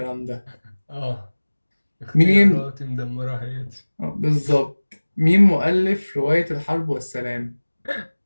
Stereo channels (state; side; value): inverted; both; correlation -1.00